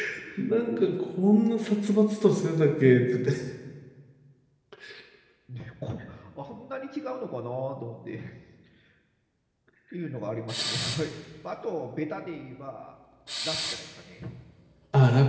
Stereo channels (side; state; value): both; identical; correlation 1.00